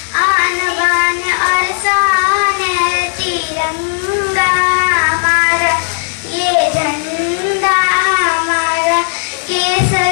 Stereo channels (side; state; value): right; silent; digital silence